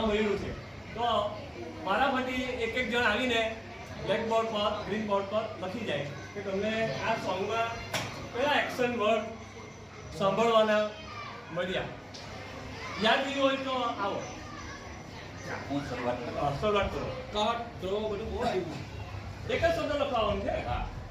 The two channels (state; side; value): identical; both; correlation 1.00